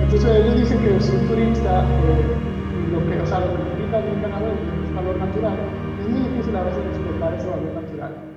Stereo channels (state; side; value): identical; both; correlation 1.00